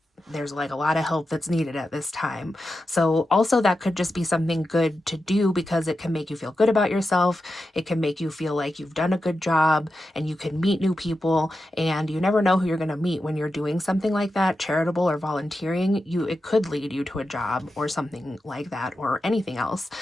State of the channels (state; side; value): normal; both; correlation 0.90